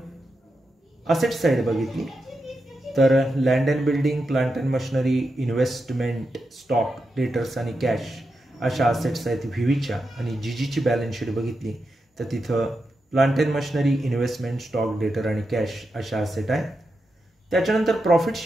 असेट साइड बघितली तर land and building, plant and machinery, investment, stock, debtors आणि कॅश अशा असेट्स आहेत व्हीच्या. आणि जीजीची बॅलन्स शीट बघितली तर तिथं plant and machinery, investment, stock, डेटर आणि कॅश अशा असेट आहेत. त्याच्यानंतर प्रॉफिट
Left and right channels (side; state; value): both; normal; correlation 0.87